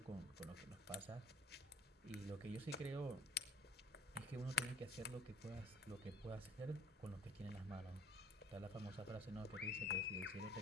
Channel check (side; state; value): both; normal; correlation 0.53